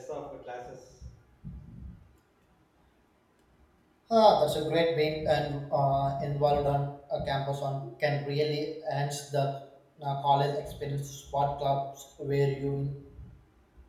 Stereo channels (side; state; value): both; identical; correlation 1.00